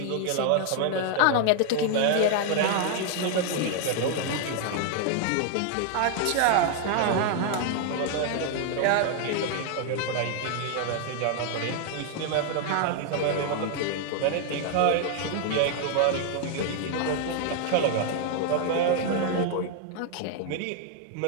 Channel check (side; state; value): both; different; correlation 0.00